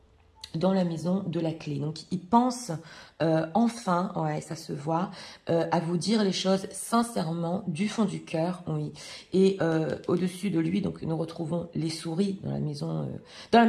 dans la maison de la clé. Donc, il pense enfin, ouais, ça se voit, à vous dire les choses sincèrement, du fond du cœur, oui. Et au-dessus de lui, donc nous retrouvons les souris dans la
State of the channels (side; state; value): both; identical; correlation 1.00